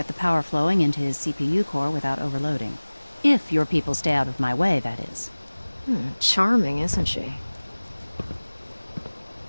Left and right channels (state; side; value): inverted; both; correlation -1.00